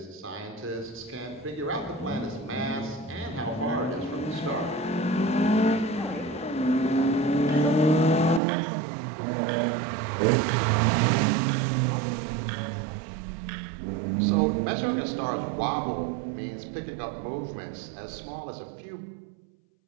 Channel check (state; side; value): drops out; left; at 8.4 s